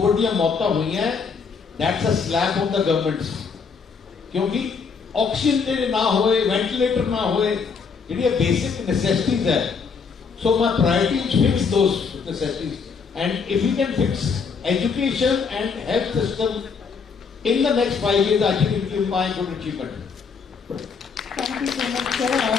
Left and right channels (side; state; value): right; quieter; 5.5 dB